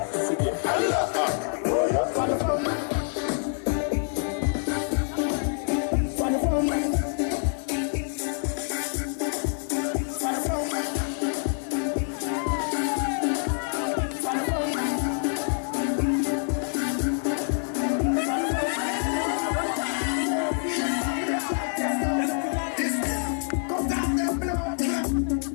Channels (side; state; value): right; silent; 61 dB below the other